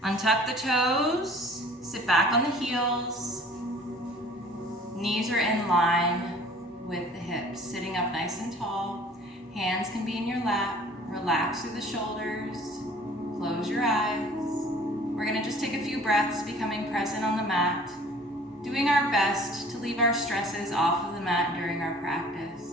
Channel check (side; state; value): both; normal; correlation 0.50